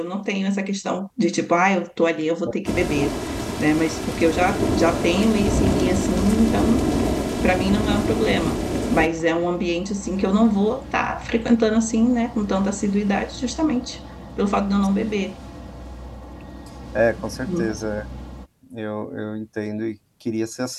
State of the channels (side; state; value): both; identical; correlation 1.00